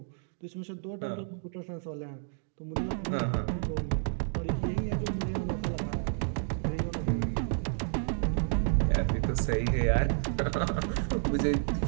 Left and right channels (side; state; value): left; silent; digital silence